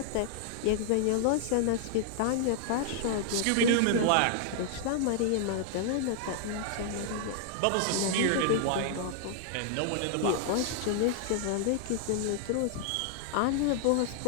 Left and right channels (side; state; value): both; different; correlation 0.00